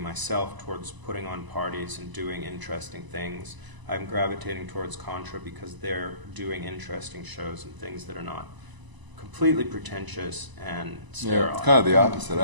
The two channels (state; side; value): late; left; 1.0 ms